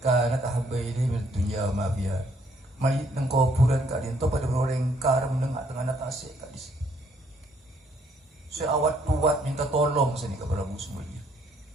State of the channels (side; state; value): both; normal; correlation 0.67